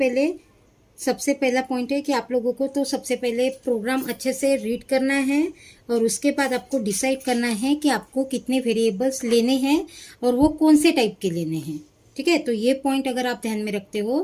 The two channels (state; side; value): identical; both; correlation 1.00